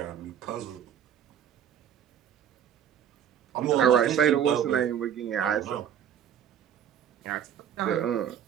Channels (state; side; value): quieter; left; 9.3 dB